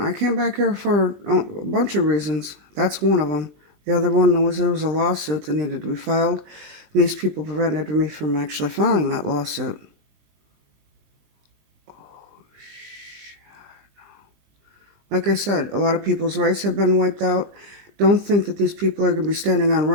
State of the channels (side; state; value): left; late; 20 ms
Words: came back here for a bunch of reasons. That's one of them. The other one was there was a lawsuit that needed to be filed. And these people prevented me from actually filing that lawsuit. Like I said, a lot of people's rights have been wiped out. Don't think that these people are going to be standing on